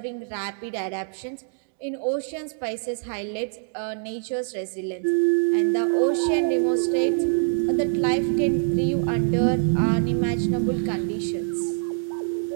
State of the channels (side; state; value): left; silent; digital silence